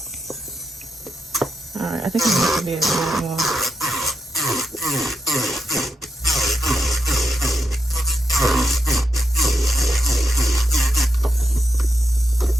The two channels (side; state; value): both; normal; correlation 0.83